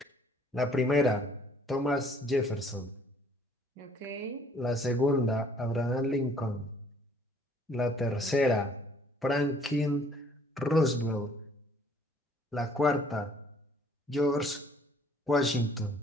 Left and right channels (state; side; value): normal; both; correlation 0.60